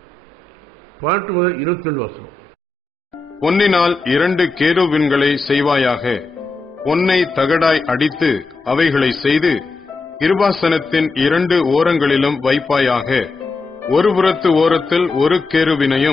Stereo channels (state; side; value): quieter; right; 3.5 dB